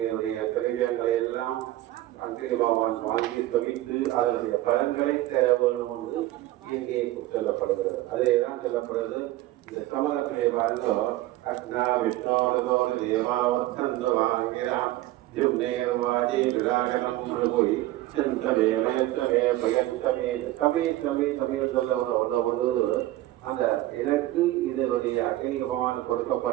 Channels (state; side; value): quieter; left; 16.1 dB